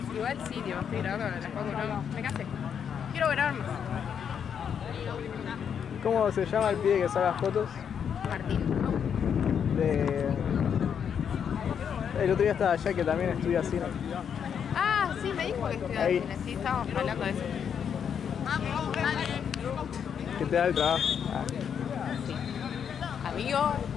Igual sí, tío, estoy grabando con las fotos, no, me casé. Quiero grabar más. ¿Cómo se llama el pibe que saca fotos? Martín. De. El otro día estaba allá que también estudia cine. Ah, sí, me dijo que estudiaba Ahí. cine, sí, estábamos hablando de eso. Que te da el trabajo. Ah. Amigo,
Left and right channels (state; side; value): quieter; right; 7.7 dB